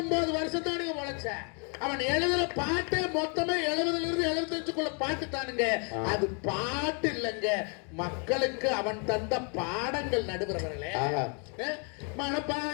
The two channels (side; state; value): right; quieter; 37.9 dB